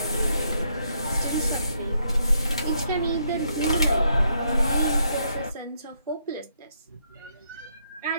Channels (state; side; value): inverted; both; correlation -0.75